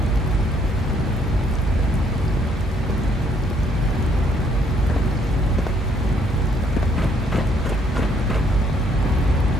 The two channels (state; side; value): normal; both; correlation 0.68